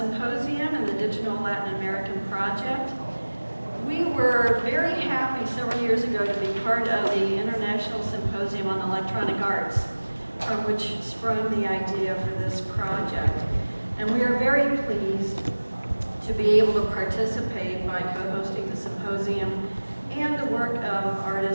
and the Digital Latin American Project. We were very happy several years ago to be part of the International Symposium on Electronic Arts, from which sprung the idea for this project. And we are very pleased to be able to participate by co-hosting the symposium and the work of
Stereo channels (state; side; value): inverted; both; correlation -1.00